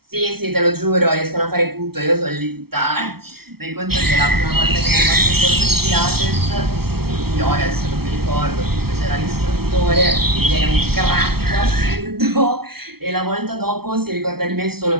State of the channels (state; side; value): late; left; 0.95 ms